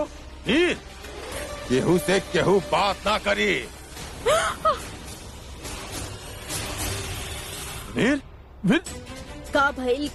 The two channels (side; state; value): both; identical; correlation 1.00